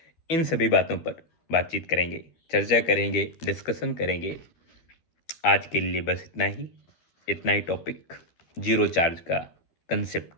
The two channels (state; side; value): late; right; 12 ms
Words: इन सभी बातों पर बातचीत करेंगे, चर्चा करेंगे, डिस्कशन करेंगे। आज के लिए बस इतना ही टॉपिक, जीरो चार्ज का